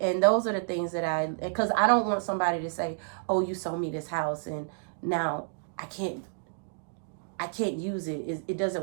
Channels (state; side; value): silent; left; digital silence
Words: And those are the things that because I don't want somebody to say, oh, you sold me this house and now I can't use it. It